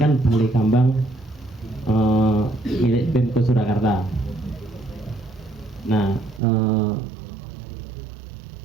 Balai Kambang milik Pemko Surakarta. Nah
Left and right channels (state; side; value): drops out; left; at 6.4 s